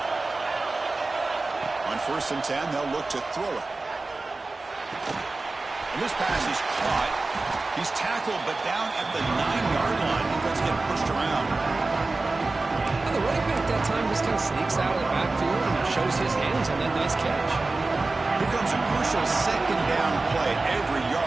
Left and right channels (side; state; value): left; quieter; 3.4 dB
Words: On 1st and 10, they'll look to throw it. And this pass is caught. He's tackled, but down at the 9-yard line. Defense getting pushed around. And the running back that time just kind of sneaks out of the backfield and shows his hands on that nice catch. Here comes a crucial 2nd down play. Every